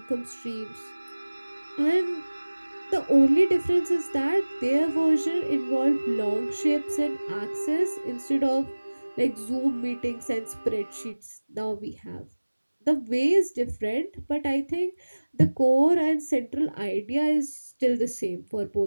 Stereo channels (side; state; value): both; inverted; correlation -1.00